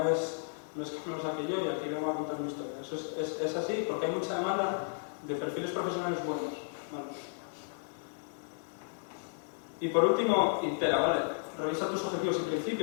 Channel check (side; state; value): right; silent; digital silence